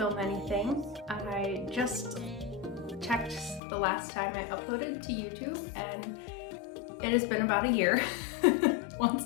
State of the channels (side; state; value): right; drops out; at 3.6 s